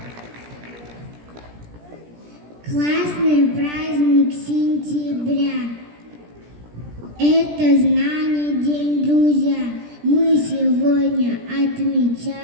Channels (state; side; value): late; left; 17 ms